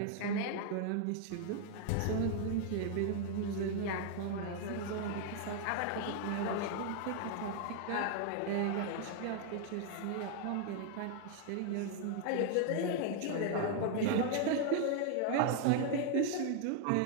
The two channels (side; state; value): both; different; correlation 0.00